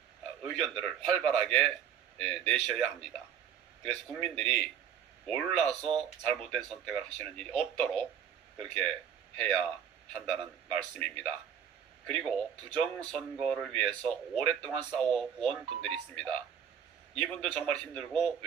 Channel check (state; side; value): quieter; left; 8.5 dB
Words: 의견들을 활발하게 내셔야 합니다. 그래서 국민들이 몰라서 잘못된 선택을 하시는 일이 없도록 그렇게 해야 한다는 말씀입니다. 그리고 부정선거를 위해서 오랫동안 싸워온 분들이 있습니다. 이분들 정말 힘들고